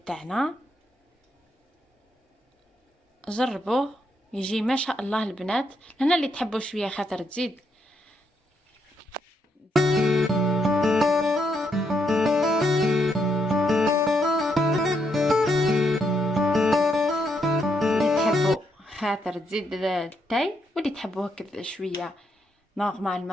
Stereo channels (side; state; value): both; normal; correlation 0.77